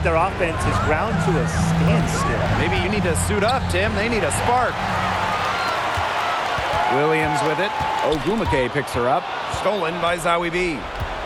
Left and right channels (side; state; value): both; identical; correlation 1.00